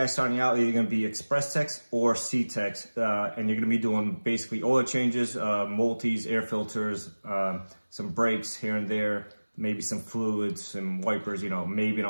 starting out, you're going to be express techs or C techs, and you're going to be doing basically oil changes, multis, air filters, some brakes here and there, maybe some fluids, some wipers, maybe an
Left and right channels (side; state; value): both; inverted; correlation -1.00